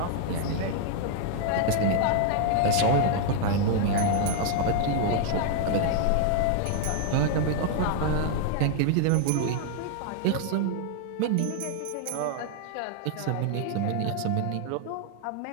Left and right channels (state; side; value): different; both; correlation 0.00